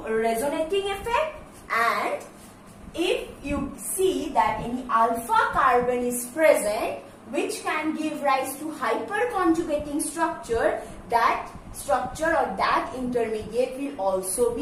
resonating effect. And if you see that any alpha carbon is present which can give rise to hyperconjugating structure, that structure or that intermediate will also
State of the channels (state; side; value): identical; both; correlation 1.00